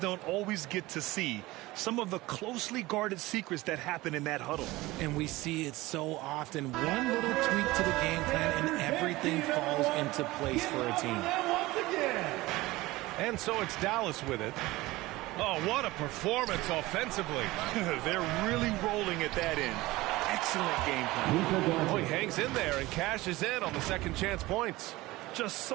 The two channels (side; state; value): left; quieter; 19.5 dB